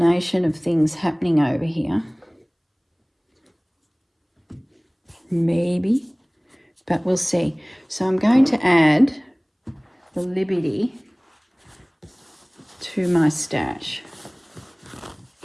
of things happening over here. Maybe, but we'll see. So I'm going to add the Liberty to my stash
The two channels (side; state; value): both; identical; correlation 1.00